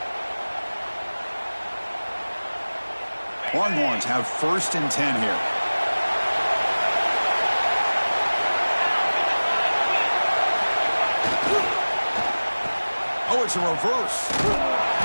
Longhorns have 1st and 10 here. Oh, it's a reverse.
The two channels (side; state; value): both; inverted; correlation -1.00